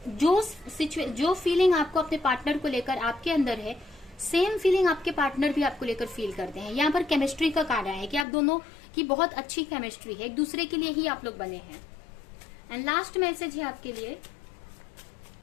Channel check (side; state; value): right; drops out; at 8.2 s